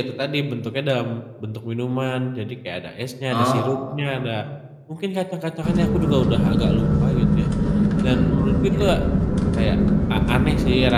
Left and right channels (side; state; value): both; identical; correlation 1.00